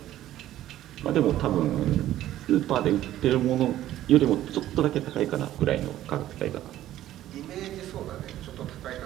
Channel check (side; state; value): left; quieter; 13.4 dB